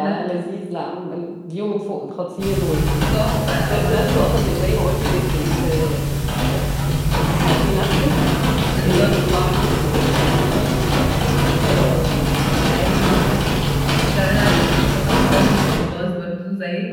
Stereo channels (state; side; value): identical; both; correlation 1.00